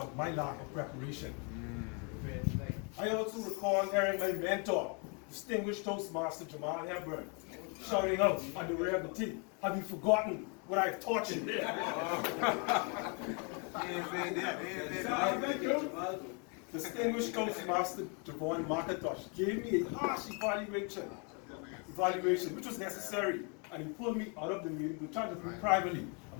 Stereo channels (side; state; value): right; quieter; 35.9 dB